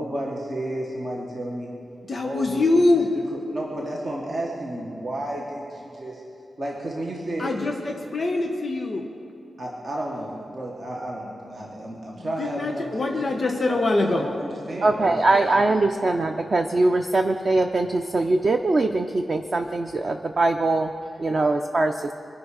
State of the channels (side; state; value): both; normal; correlation 0.90